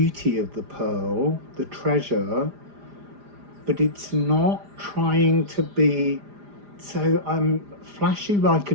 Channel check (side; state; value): left; late; 4.9 ms